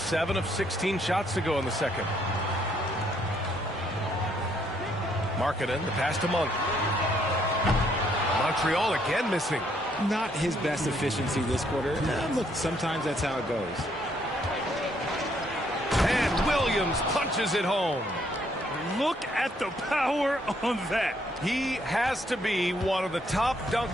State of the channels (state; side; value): normal; both; correlation 0.70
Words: of 16 shots to go in the second. Markkanen, the pass to Monk. Montreal again missing. Not his best efficiency this quarter. Look, sometimes that's how it goes. And Williams punches it home. Look at the power on that. He has to be one of the top